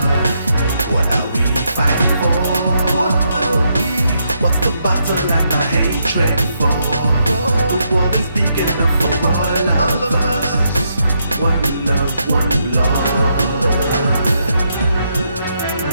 What are we fighting for? What are we? What's the battle and the hatred for? The world is big enough for all of us. One love, one Lord.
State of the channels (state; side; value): inverted; both; correlation -0.78